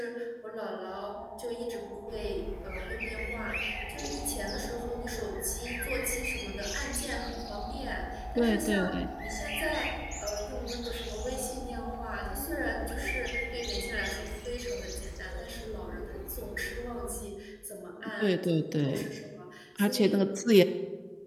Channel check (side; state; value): both; identical; correlation 1.00